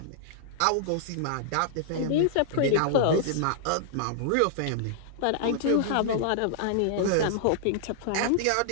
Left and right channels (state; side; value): different; both; correlation -0.01